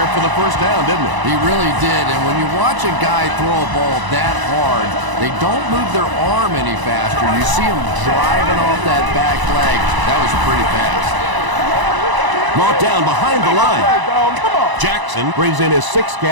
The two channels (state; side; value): late; left; 1.0 ms